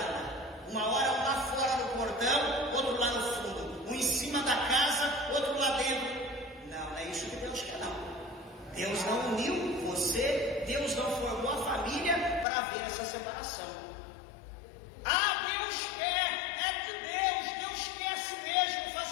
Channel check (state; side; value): drops out; right; at 12.5 s